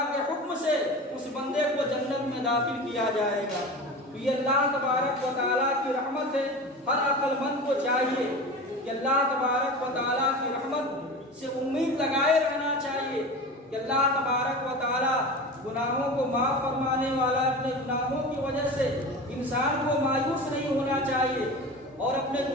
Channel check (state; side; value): normal; both; correlation 0.31